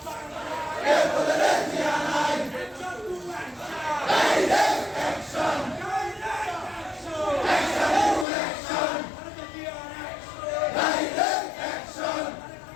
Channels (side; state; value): right; drops out; at 8.2 s